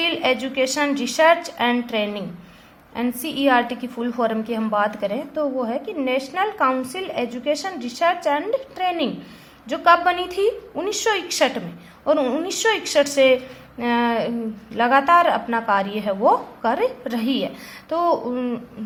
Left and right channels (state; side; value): identical; both; correlation 1.00